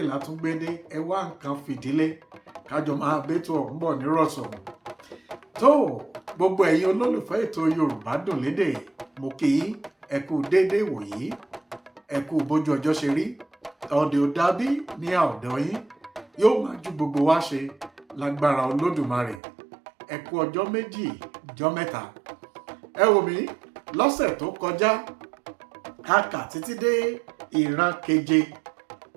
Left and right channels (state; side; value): drops out; left; at 19.4 s